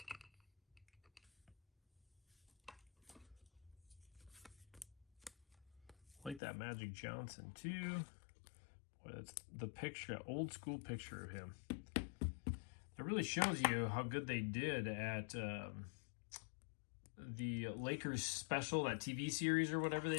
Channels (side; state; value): right; drops out; at 6.4 s